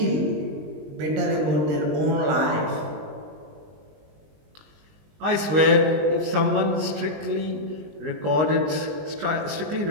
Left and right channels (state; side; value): late; left; 20 ms